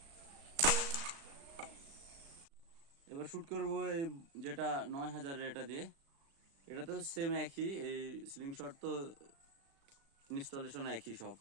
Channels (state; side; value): late; left; 36 ms